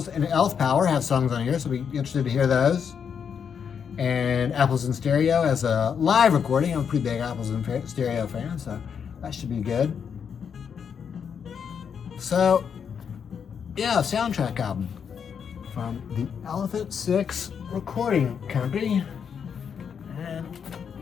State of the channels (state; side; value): quieter; right; 7.1 dB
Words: and Elf Power have songs on here, so I'll be interested to hear those. And Apples in Stereo has a live recording. I'm a pretty big Apples in Stereo fan, so that should be good. So, yeah, soundtrack album from the Elephant Six Recording Company. And